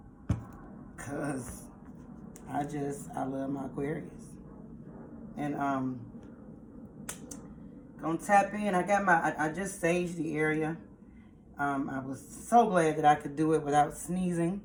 cause I love my Aquarius, and gonna tap in. I just saged the area. I was so glad that I could do it without sneezing.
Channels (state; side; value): identical; both; correlation 1.00